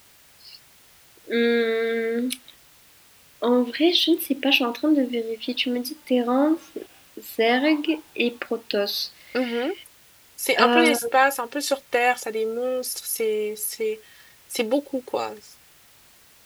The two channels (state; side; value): identical; both; correlation 1.00